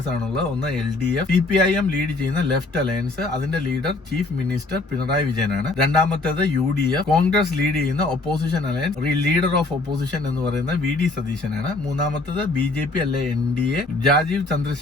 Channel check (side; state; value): right; quieter; 3.1 dB